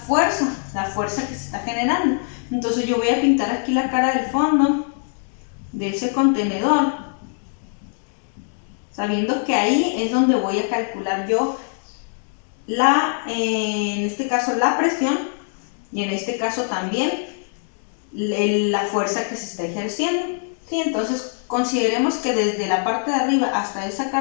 fuerza, la fuerza que se está generando. Entonces yo voy a pintar aquí la cara del fondo de ese contenedor, sabiendo que ahí es donde voy a calcular yo en este caso la presión y en este caso también la fuerza que se está ejerciendo. ¿Sí? Entonces consideremos que desde la parte de arriba hasta esa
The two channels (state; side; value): silent; right; 59 dB below the other